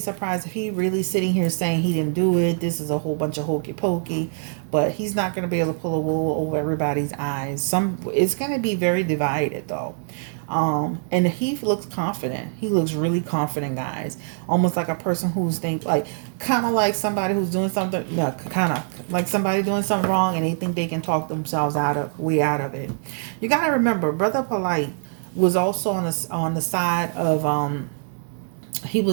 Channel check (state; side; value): silent; left; digital silence